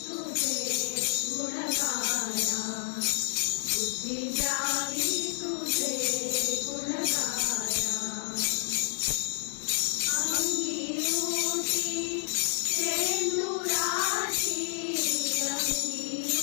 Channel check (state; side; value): silent; right; digital silence